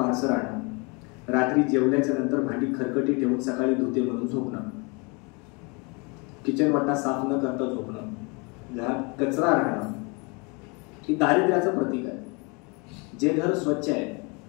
राहणं, रात्री जेवल्याच्या नंतर भांडी खरकटी ठेवून सकाळी धुते म्हणून झोपणं, किचन वाटा साफ न करता झोपणं, घरात कचरा राहणं, ही दारिद्र्याचं प्रतीक आहे. जे घर स्वच्छ आहे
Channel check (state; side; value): quieter; right; 30.7 dB